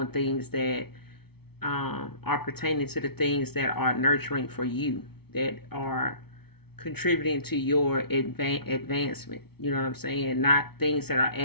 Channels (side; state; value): right; late; 0.96 ms